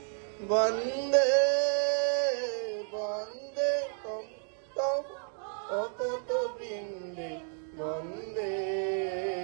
বন্দে বন্দে তম তম অকত বৃন্দে বন্দে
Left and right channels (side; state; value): left; silent; 57 dB below the other